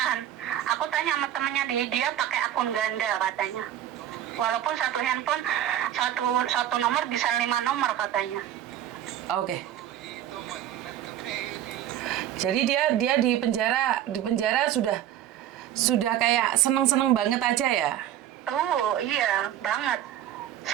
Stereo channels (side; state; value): left; quieter; 11.5 dB